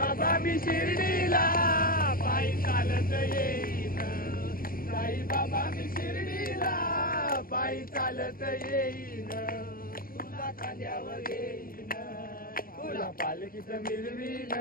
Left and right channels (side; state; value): right; late; 0.42 ms